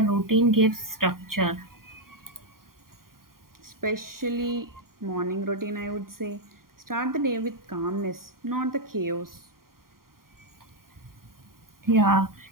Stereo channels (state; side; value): late; left; 0.92 ms